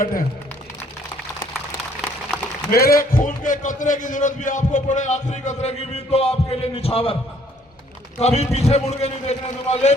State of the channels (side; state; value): both; normal; correlation 0.62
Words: हैं। मेरे खून के कतरे की जरूरत भी आपको पड़े, आखिरी कतरे की भी, तो आपके लिए निछावर, कभी पीछे मुड़ के नहीं देखने दूंगा।